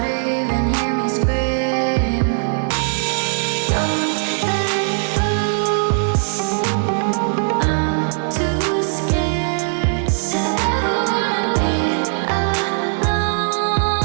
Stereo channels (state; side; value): silent; left; digital silence